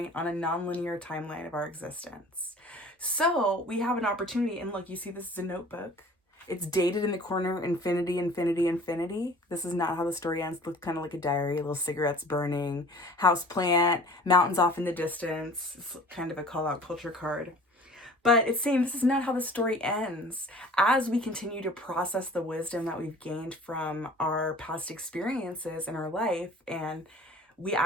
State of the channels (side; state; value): both; normal; correlation 0.47